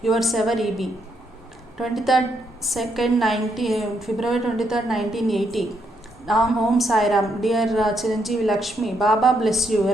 Yours ever E.B. 23rd February 23rd 1980. Om Sai Ram. Dear Chiranjeevi Lakshmi, Baba bless you.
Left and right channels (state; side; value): normal; both; correlation 0.77